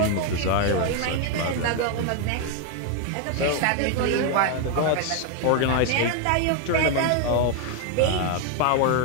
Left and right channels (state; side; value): different; both; correlation 0.01